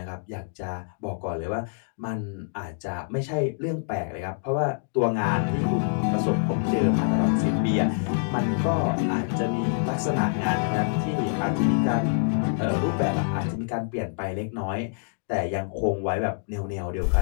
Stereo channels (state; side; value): silent; right; digital silence